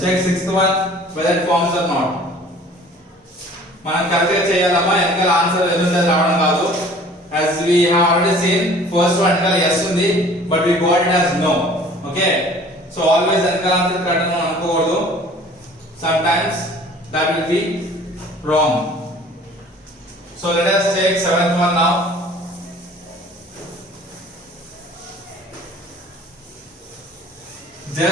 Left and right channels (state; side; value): normal; both; correlation 0.49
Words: Check sixth one whether it forms or not. మనం correct గా చేయాలమ్మా, వెనకాల answer ఎదురుంది రావడం కాదు. As we have already seen, first one వెనకాల yes ఉంది, but we got it as no. Okay, so always వెనకాల answer correct అని అనుకోకూడదు. Sometimes that will be wrong. So let us take seventh one now.